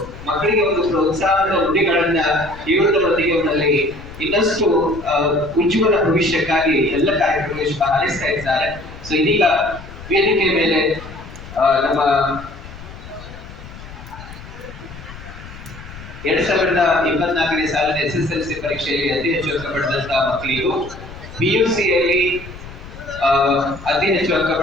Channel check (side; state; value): left; noise; rumble, 15 dB below the sound